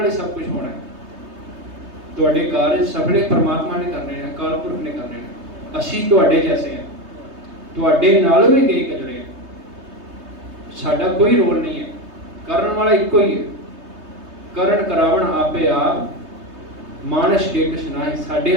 ही सब कुछ होना है। तुहाडे कार्य सफले परमात्मा ने करने हैं, अकाल पुरख ने करने हैं। असीं तुहाडे जैसे हैं, तुहाडे नालों भी कई गुजरे हैं। साडा कोई रोल नहीं है, करन वाला इको ही है। करण करावण आपे आप, मानस के कुछ ना ही। साडे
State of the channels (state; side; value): late; left; 3.3 ms